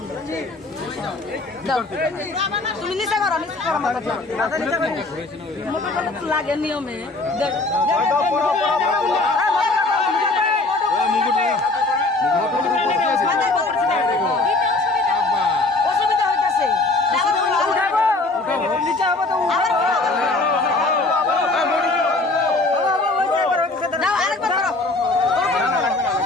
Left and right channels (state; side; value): quieter; right; 3.1 dB